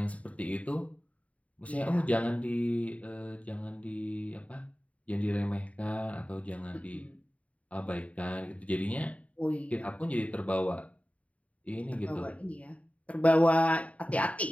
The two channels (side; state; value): right; late; 0.067 ms